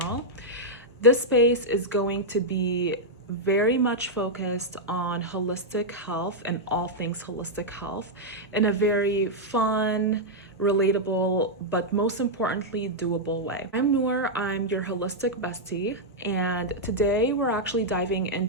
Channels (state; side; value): normal; both; correlation -0.04